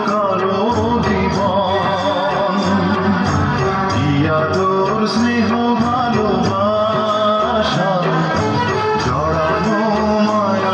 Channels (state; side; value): identical; both; correlation 1.00